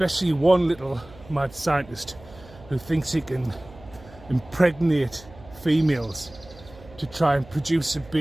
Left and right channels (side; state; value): right; noise; hum, 21 dB below the sound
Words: one little mad scientist who thinks he can impregnate females to try and produce a